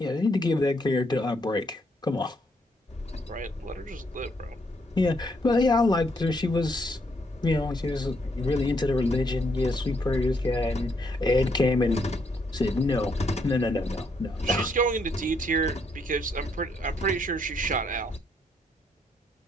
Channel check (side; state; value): both; normal; correlation 0.74